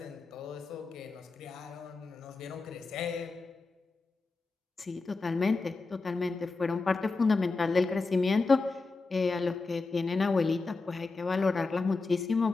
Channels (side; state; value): right; quieter; 3.9 dB